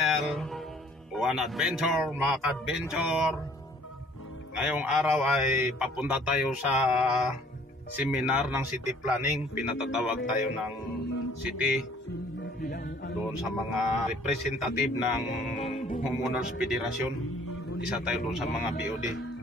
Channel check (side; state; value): both; normal; correlation 0.57